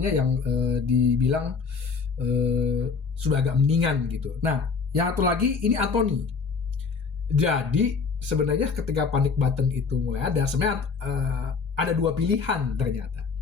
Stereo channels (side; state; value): right; quieter; 5.1 dB